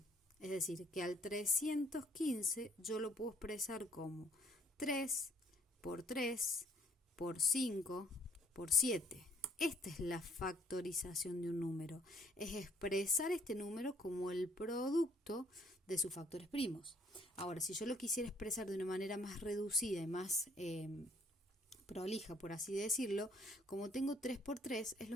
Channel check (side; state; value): both; normal; correlation 0.63